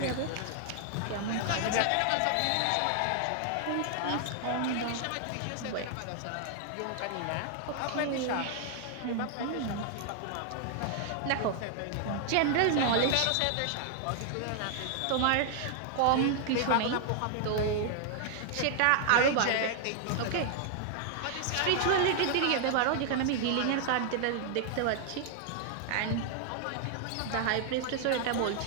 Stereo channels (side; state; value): both; different; correlation 0.00